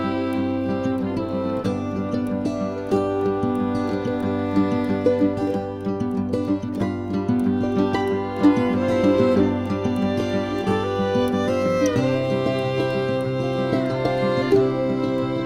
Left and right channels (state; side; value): identical; both; correlation 1.00